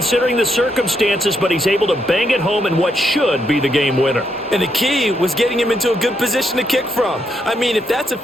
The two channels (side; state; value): both; normal; correlation 0.78